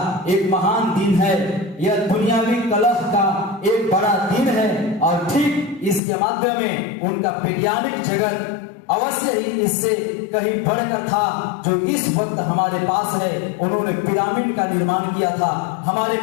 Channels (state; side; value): drops out; right; at 6.0 s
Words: एक महान दिन है, यह दुनियावी कलह का एक बड़ा दिन है और ठीक इसके माध्यम में उनका वैज्ञानिक जगत अवश्य ही इससे कहीं बढ़कर था जो इस वक्त हमारे पास है। उन्होंने पिरामिड का निर्माण किया था, हमारे